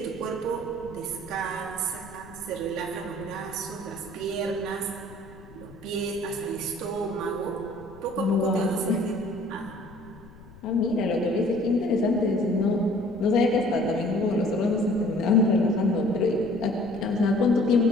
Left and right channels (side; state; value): left; noise; rumble, 20 dB below the sound